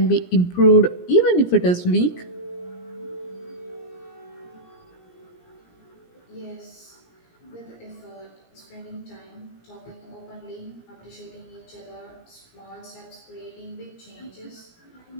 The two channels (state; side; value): late; right; 17 ms